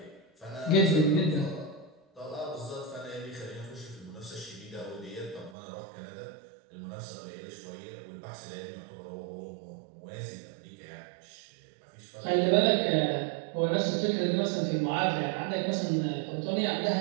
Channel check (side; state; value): left; drops out; at 5.6 s